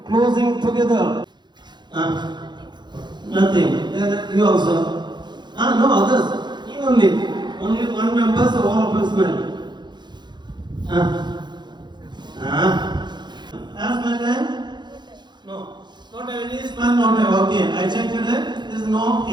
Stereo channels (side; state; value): left; late; 0.21 ms